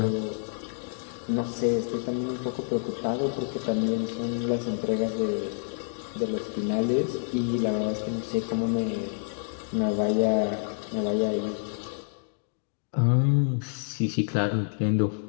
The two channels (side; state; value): right; silent; digital silence